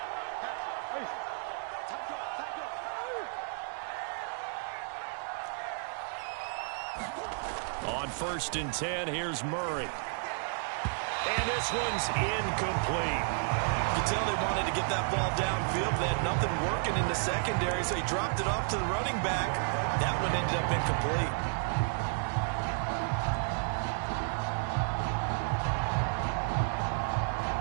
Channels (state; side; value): silent; left; 56 dB below the other